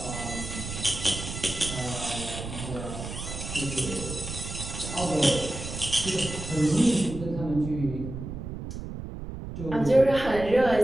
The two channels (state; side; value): noise; right; rumble, 8 dB below the sound